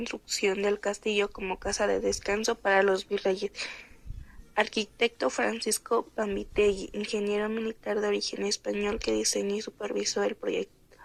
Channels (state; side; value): identical; both; correlation 1.00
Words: del castillo como casa de descanso para los virreyes. Arquitecto Francisco Pambitelli, ingeniero militar de origen español que diseñó y supervisó el proyecto